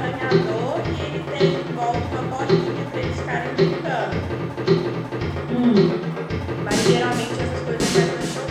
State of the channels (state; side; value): identical; both; correlation 1.00